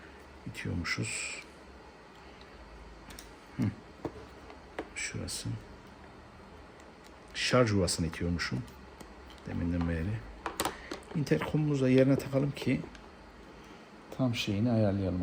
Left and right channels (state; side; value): identical; both; correlation 1.00